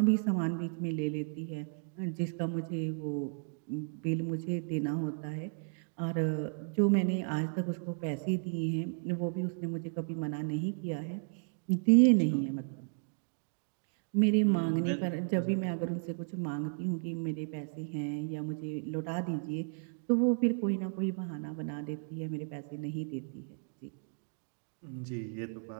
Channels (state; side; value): silent; left; 55 dB below the other